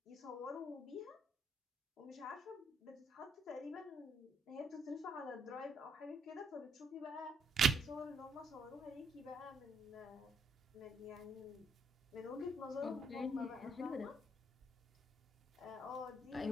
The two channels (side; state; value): both; normal; correlation 0.71